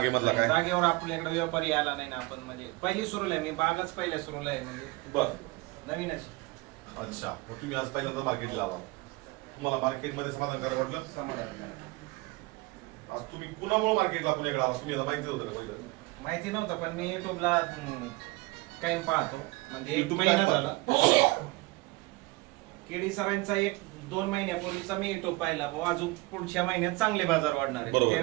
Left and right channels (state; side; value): quieter; left; 23.0 dB